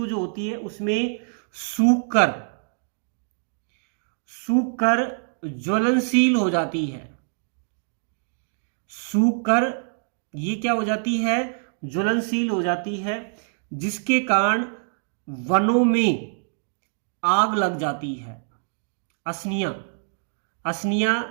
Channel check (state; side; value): silent; left; digital silence